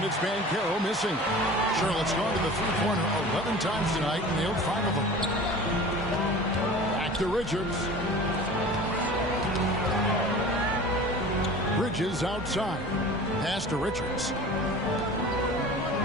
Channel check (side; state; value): both; normal; correlation 0.40